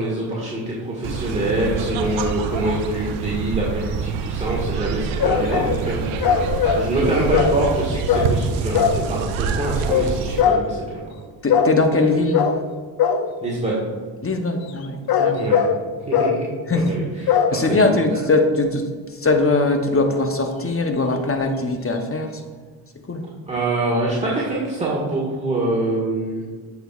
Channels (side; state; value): both; normal; correlation 0.13